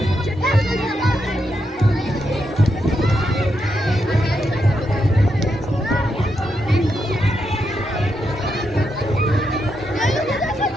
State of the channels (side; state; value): both; normal; correlation 0.82